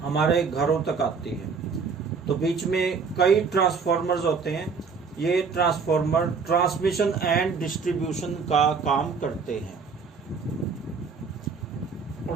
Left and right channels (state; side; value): quieter; left; 5.3 dB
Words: हमारे घरों तक आती है। तो बीच में कई ट्रांसफार्मर्स होते हैं। ये ट्रांसफार्मर ट्रांसमिशन एंड डिस्ट्रीब्यूशन का काम करते हैं।